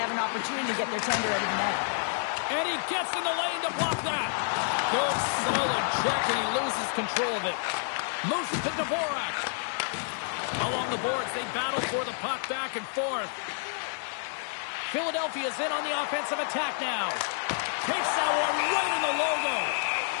have an opportunity to get their tender out of the net. And he gets in the lane to block that. Good, solid check, and he loses control of it. Moves it to Dvorak. Along the boards, they battle for the puck back and forth. Philadelphia's in on the offensive attack now. Takes that one right in the logo.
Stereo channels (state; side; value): silent; right; digital silence